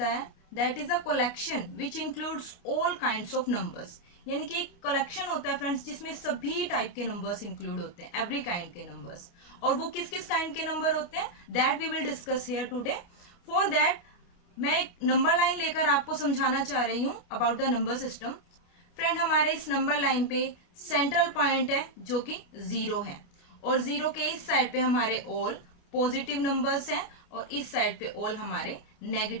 है that is a collection which includes all kinds of numbers, यानी कि एक कलेक्शन होता है फ्रेंड्स जिसमें सभी टाइप के नंबर्स इंक्लूड होते हैं, एवरी काइंड के नंबर्स। और वो किस किस काइंड के नंबर होते हैं that we will discuss here today. For that मैं एक नंबर लाइन लेकर आपको समझाना चाह रही हूँ about the number system. Friend, हमारे इस नंबर लाइन पे सेंट्रल पॉइंट है जो कि 0 है और 0 के इस साइड पे हमारे ऑल पॉजिटिव नंबर्स हैं और इस साइड पे ऑल हमारे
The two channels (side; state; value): right; late; 29 ms